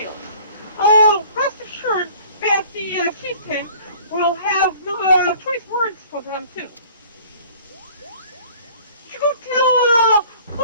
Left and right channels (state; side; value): inverted; both; correlation -0.50